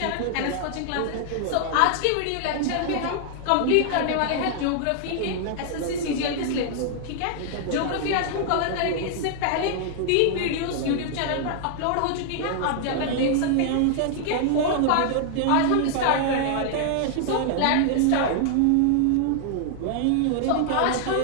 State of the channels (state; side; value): different; both; correlation -0.01